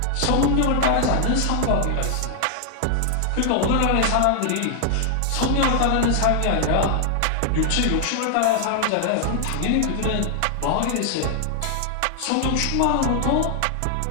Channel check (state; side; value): different; both; correlation 0.00